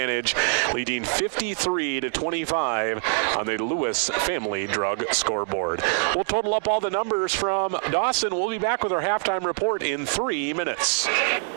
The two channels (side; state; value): left; silent; 62 dB below the other